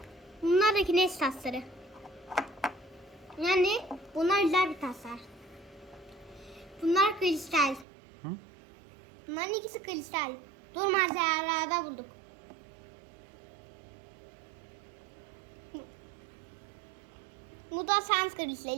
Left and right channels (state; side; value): drops out; left; at 7.9 s